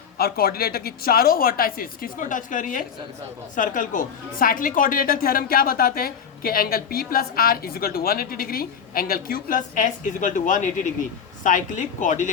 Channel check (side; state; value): right; quieter; 7.2 dB